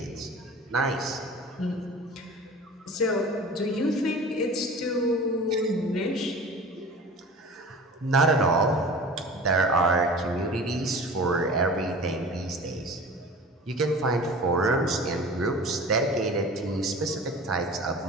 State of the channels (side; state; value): both; normal; correlation 0.39